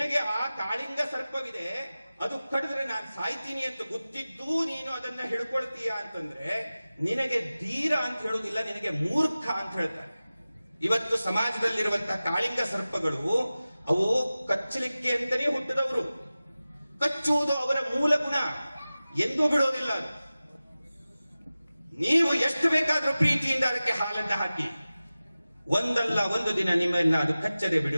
ಆ ಕಾಳಿಂಗ ಸರ್ಪವಿದೆ, ಅದು ಕಡಿದ್ರೆ ನಾನು ಸಾಯ್ತೀನಿ ಅಂತ ಗೊತ್ತಿದ್ದು ನೀನು ಅದನ್ನ ಹಿಡ್ಕೊಳ್ತೀಯ ಅಂತಂದ್ರೆ ನಿನಗೆ ಧೀರ ಅಂತ ಹೇಳುವುದಿಲ್ಲ, ನಿನಗೆ ಮೂರ್ಖ ಅಂತ ಹೇಳ್ತಾರೆ. ಇವತ್ತು ಸಮಾಜದಲ್ಲಿರುವಂತಹ ಕಾಳಿಂಗ ಸರ್ಪಗಳು ಅವು ಕಚ್ಚಲಿಕ್ಕೆ ಅಂತಲೇ ಹುಟ್ಟಿದವರು. ಕಚ್ಚುವುದು ಅವರ ಮೂಲ ಗುಣ, ಎಂದೂ ಬಿಡೋದಿಲ್ಲ. ನೀವು ಎಷ್ಟು ಬೇಕಾದ್ರೂ ಪ್ರೀತಿಯಿಂದ ಅದಕ್ಕೆ ಹಾಲನ್ನ ಹಾಕಿ, ಒಂದಲ್ಲ ಒಂದು ದಿನ ನಿಮ್ಮನ್ನ ಅದು ಕಚ್ಚದೆ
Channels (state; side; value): inverted; both; correlation -0.96